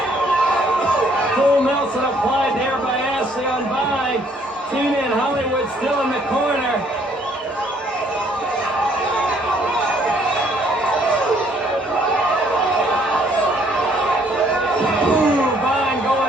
Full Nelson applied there by Ashley on Vine. Tina and Hollywood still in the corner. Ooh, Vine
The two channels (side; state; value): both; normal; correlation 0.64